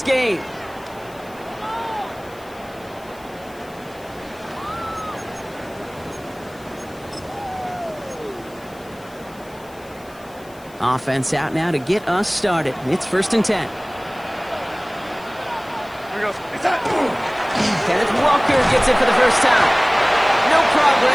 game. Offense out now to get us started. It's 1st and 10. Kenneth Walker gets it for the first time. No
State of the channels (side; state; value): left; noise; hiss, 25 dB below the sound